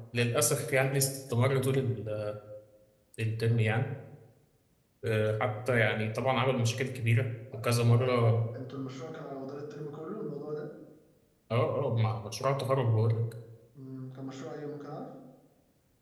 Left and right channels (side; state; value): both; identical; correlation 1.00